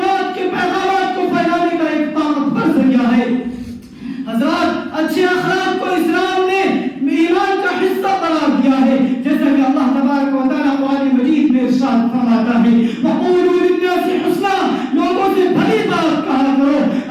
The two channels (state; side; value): identical; both; correlation 1.00